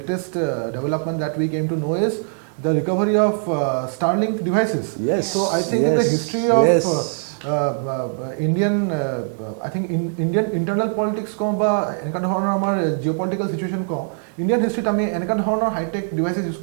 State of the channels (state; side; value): silent; left; digital silence